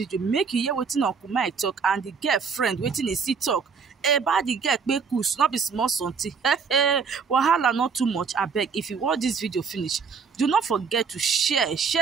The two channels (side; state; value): left; quieter; 5.7 dB